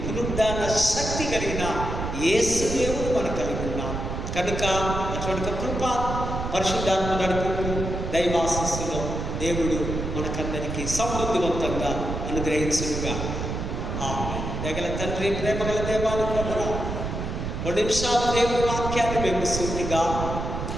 పునరుద్ధాన శక్తి కలిగిన యేసు దేవుడు మనం కలిగి ఉన్నాం. కనుక అటువంటి కృప, పరిశుద్ధాత్మ నడుపుకు, దైవాశీస్సులో దేవుడు మనకందరికీ సమృద్ధివంతంగా అనుగ్రహించుగా. దగల తండ్రి, ప్రేమగల దేవానికి వందనాలు. 2 నిమిషాలు దేవుడి వాక్యాన్ని మేము సూటిగా,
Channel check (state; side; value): noise; right; rumble, 4 dB below the sound